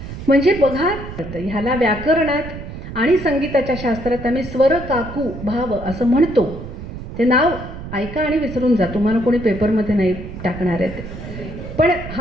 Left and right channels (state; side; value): noise; right; rumble, 10 dB below the sound